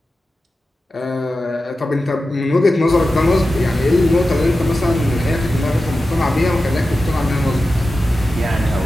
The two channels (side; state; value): both; normal; correlation 0.93